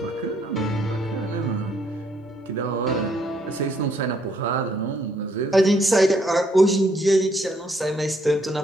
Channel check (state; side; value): normal; both; correlation 0.69